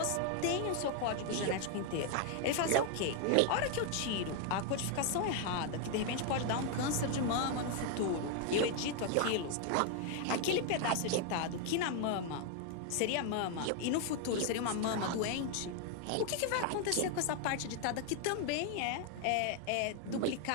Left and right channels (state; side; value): different; both; correlation 0.01